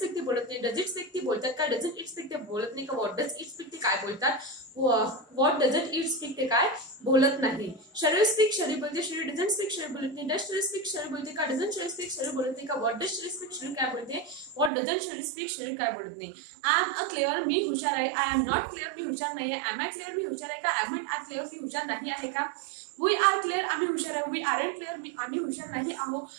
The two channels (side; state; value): left; drops out; at 14.7 s